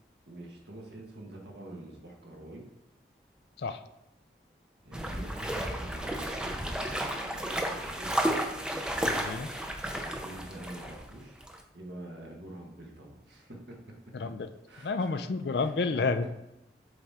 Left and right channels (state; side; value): normal; both; correlation 0.50